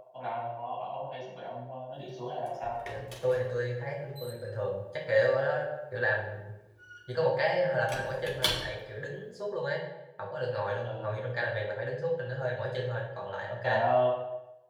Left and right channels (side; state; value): both; identical; correlation 1.00